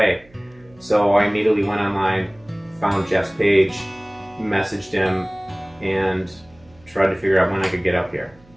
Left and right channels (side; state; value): right; noise; hum, 28 dB below the sound